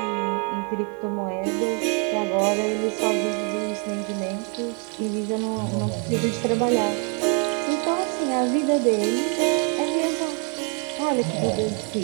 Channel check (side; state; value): left; quieter; 37.9 dB